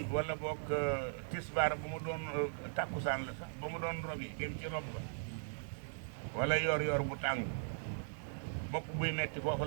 wala boog tisbaar bu mu doon tàkkusaan la sax ba mu doon robi dem ci rob ba wala yor bu tàng bopp buy metti foofu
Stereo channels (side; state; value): left; silent; digital silence